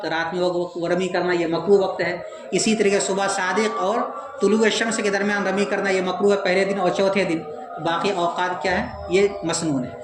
رات میں وہ رمی کرنا یہ مکروہ وقت ہے۔ اسی طریقے صبح صادق اور طلوع شمس کے درمیان رمی کرنا یہ مکروہ ہے پہلے دن اور چوتھے دن، باقی اوقات کیا ہے؟ یہ مسنون ہے۔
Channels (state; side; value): identical; both; correlation 1.00